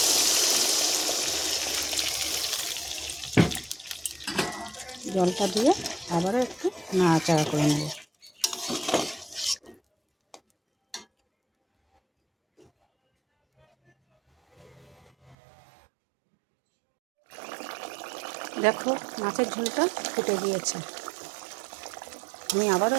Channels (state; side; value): drops out; left; at 15.4 s